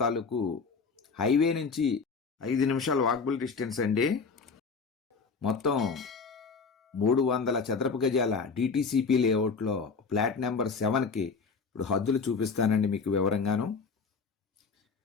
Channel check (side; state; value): right; quieter; 5.0 dB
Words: తాలూకు హైవే నుంచి 5 నిమిషాల వాకబుల్ డిస్టెన్స్ అండి. మొత్తం 300 చదరపు గజాల డిటిసిపి లేఅవుట్లో ఫ్లాట్ నెంబర్ 7కి ఇప్పుడు హద్దులు చూపిస్తానండి మీకు వివరంగాను.